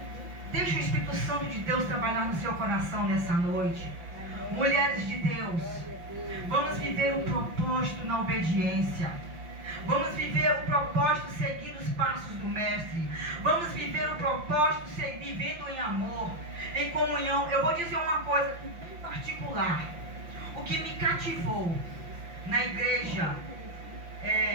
deixe o Espírito Santo de Deus trabalhar no seu coração nessa noite. Mulheres de Deus, vamos viver o propósito na obediência. Vamos viver o propósito seguindo os passos do Mestre. Vamos viver o propósito vivendo em amor, em comunhão. Eu vou dizer uma coisa em particular. O que me cativou na igreja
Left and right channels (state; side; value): late; left; 5.9 ms